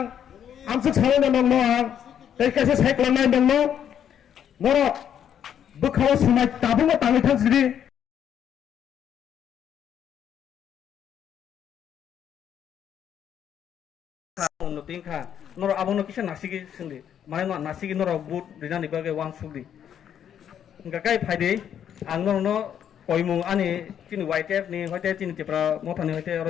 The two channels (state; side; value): quieter; right; 9.2 dB